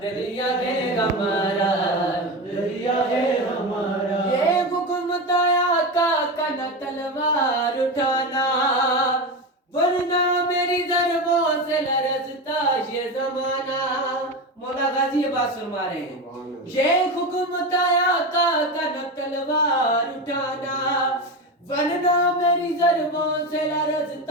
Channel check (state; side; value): normal; both; correlation 0.20